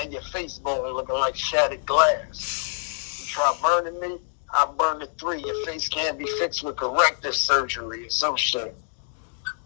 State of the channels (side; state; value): right; silent; digital silence